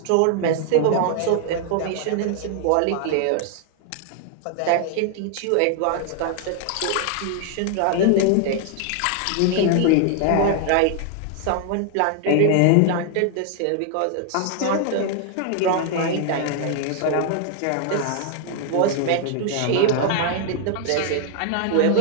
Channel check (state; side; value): different; both; correlation 0.00